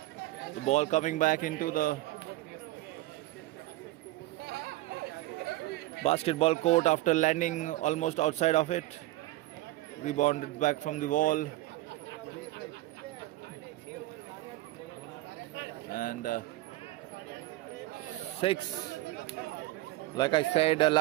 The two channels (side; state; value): left; quieter; 17.5 dB